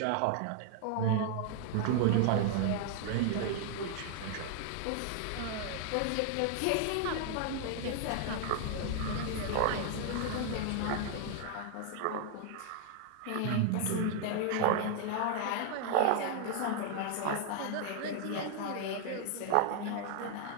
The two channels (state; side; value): different; both; correlation 0.00